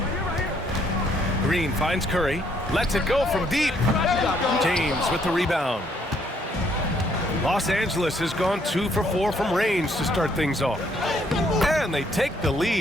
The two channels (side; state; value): both; normal; correlation 0.68